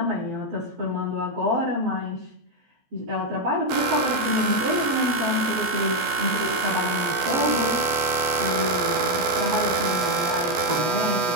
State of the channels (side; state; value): left; late; 14 ms